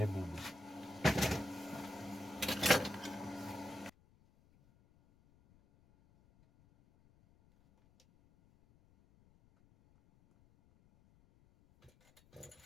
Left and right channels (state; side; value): noise; left; rumble, 29 dB below the sound